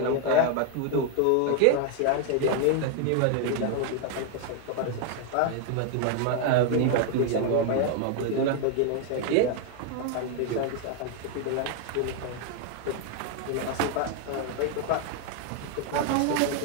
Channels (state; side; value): different; both; correlation 0.00